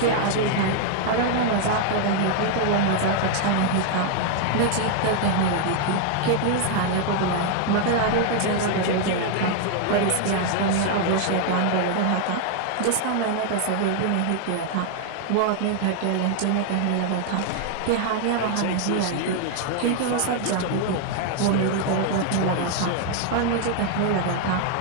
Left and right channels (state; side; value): different; both; correlation 0.00